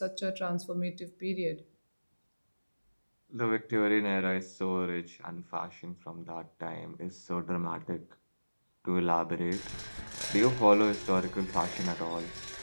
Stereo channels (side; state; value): both; inverted; correlation -1.00